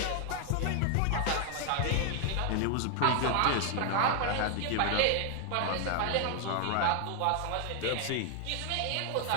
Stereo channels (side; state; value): both; different; correlation 0.00